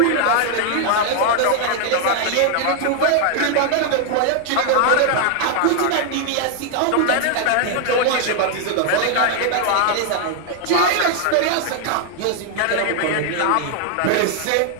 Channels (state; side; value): different; both; correlation 0.00